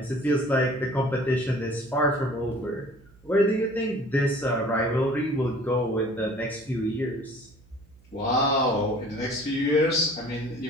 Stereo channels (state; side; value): noise; right; hum, 27 dB below the sound